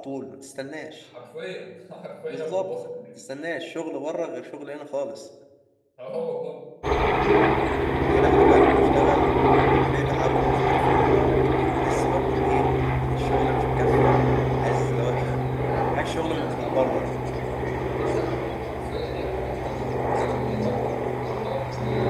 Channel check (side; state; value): both; identical; correlation 1.00